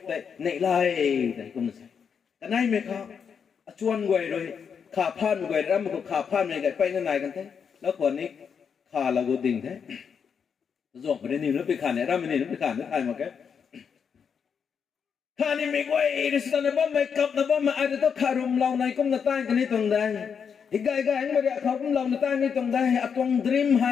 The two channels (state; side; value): quieter; right; 6.8 dB